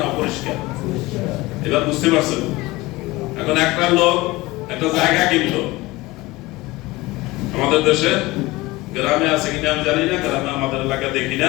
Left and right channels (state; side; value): quieter; right; 20.2 dB